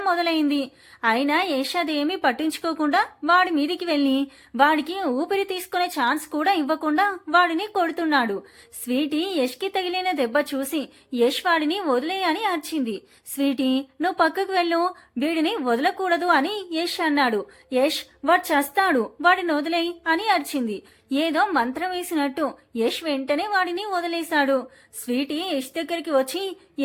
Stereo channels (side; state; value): both; identical; correlation 1.00